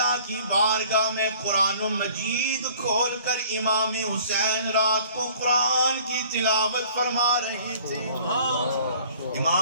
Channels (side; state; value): both; inverted; correlation -0.52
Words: کی بارگاہ میں قرآن مجید کھول کر امام حسین رات کو قرآن کی تلاوت فرما رہے تھے.